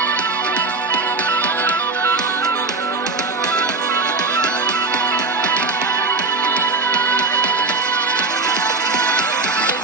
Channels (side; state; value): left; quieter; 3.8 dB